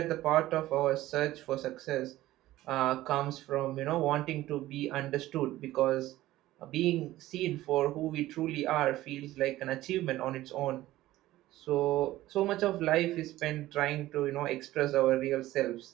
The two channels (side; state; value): left; quieter; 15.8 dB